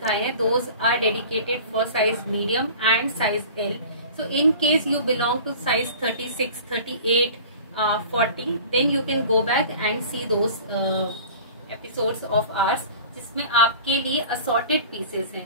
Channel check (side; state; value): both; inverted; correlation -0.42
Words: हैं those are dedicated for size medium and size L. So in case you belong to size 36, 38, 40 then you can go back and see those episodes of ours जिसमें आपके लिए असॉर्टेड पीसेस हैं।